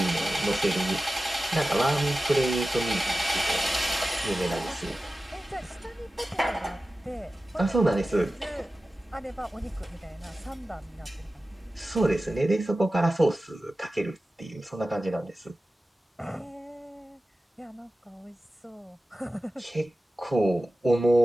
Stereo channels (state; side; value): normal; both; correlation 0.95